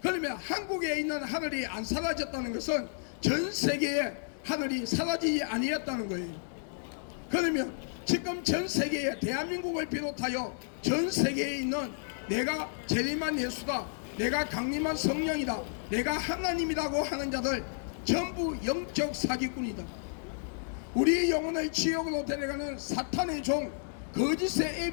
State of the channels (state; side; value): silent; right; digital silence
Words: 그러면 한국에 있는 하늘이 안 사라졌다는 것은 전 세계의 하늘이 사라지지 아니었다는 거예요. 그러면 지금 전 세계에 대한민국을 비롯하여 전 세계에 있는 내가 재림한 예수다, 내가 강림한 성령이다, 내가 하나님이라고 하는 자들 전부 영적 사기꾼이다. 우리 영혼을 지옥으로 데려가는 사탄의 종, 거짓의